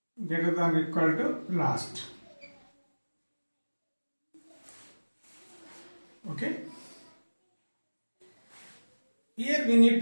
greater than or equal to last. Okay, here we need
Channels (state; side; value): inverted; both; correlation -1.00